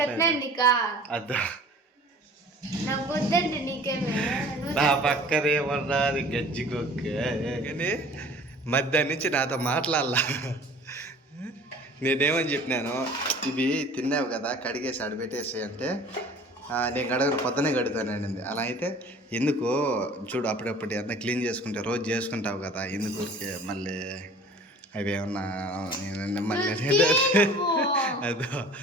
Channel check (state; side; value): normal; both; correlation 0.46